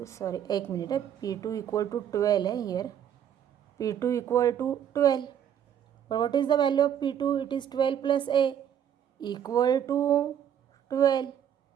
sorry, एक minute है. P2 equal to 12 है here. P2 equal to 12. But what is the value of P2? It is 12 plus A equal to 12.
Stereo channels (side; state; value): left; quieter; 9.4 dB